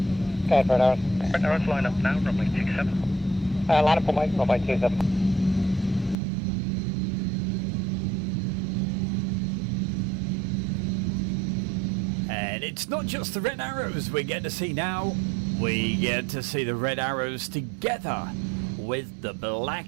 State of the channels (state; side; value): drops out; left; at 6.2 s